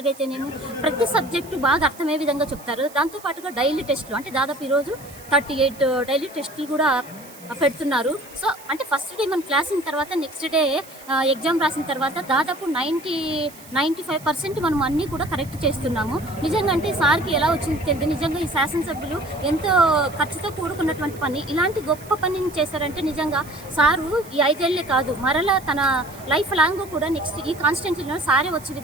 అయితేనేమో, ప్రతి సబ్జెక్టు బాగా అర్థమయ్యే విధంగా చెప్తారు. దాంతోపాటుగా డైలీ టెస్టులు, అంటే దాదాపు ఈరోజు 38 డైలీ టెస్టులు కూడా పెడుతున్నారు. సో అంటే ఫస్ట్ డే మనం క్లాస్ అయిన తర్వాత నెక్స్ట్ డే ఎగ్జామ్ రాసిన తర్వాత దాదాపు 95% మనం అన్నీ కూడా కరెక్ట్ చేస్తున్నాము. నిజంగా అంటే సార్కి ఎలా వచ్చింది తెలియదు. నిజంగా ఈ శాసనసభ్యులు ఎంతో ఖర్చుతో కూడుకున్నటువంటి పని, ఇలాంటి గొప్ప పనిని చేశారంటే నిజంగా సారు ఈ 5 ఏళ్లే కాదు, మరలా తన లైఫ్ లాంగ్ కూడా నెక్స్ట్ ఈ కాన్స్టిట్యున్సీలో సారే వచ్చే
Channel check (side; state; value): right; noise; hiss, 20 dB below the sound